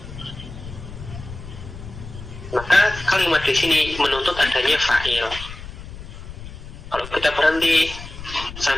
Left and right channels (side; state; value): left; noise; rumble, 12 dB below the sound